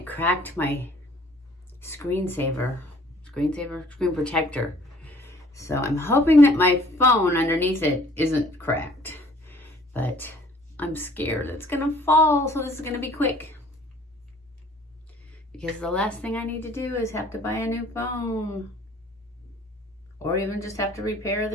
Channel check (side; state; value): both; normal; correlation 0.56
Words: cracked my screen protector. So I'm hoping that my phone underneath it isn't cracked. But I'm scared it's gonna fall, so this is gonna be quick. Because the last thing I need to do is have to buy a new phone. Or even just have to repair